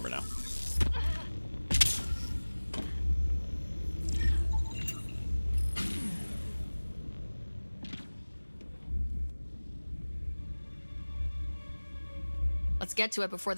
now. Let's get to it before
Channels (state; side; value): inverted; both; correlation -1.00